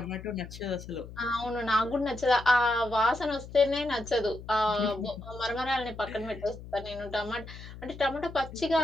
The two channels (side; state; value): left; noise; hum, 14 dB below the sound